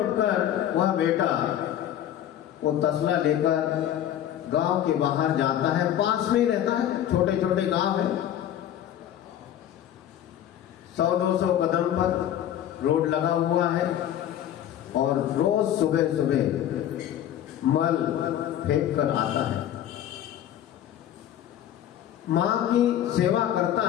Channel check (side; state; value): right; quieter; 11.1 dB